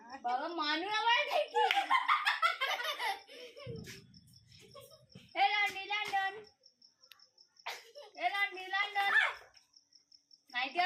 বাবা মানু আবার দেখি লন্ডন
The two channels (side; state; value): both; identical; correlation 1.00